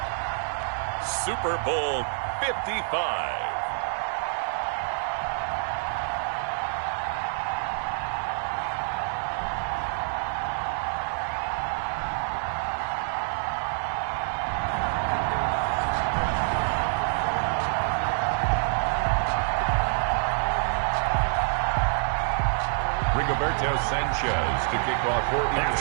Super Bowl 55. Sanchez to kick off for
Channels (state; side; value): silent; left; digital silence